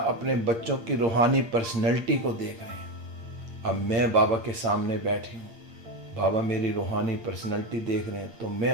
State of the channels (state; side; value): late; left; 8.6 ms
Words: अपने बच्चों की रूहानी पर्सनैलिटी को देख रहे हैं। अब मैं बाबा के सामने बैठी हूँ, बाबा मेरी रूहानी पर्सनैलिटी देख रहे हैं, तो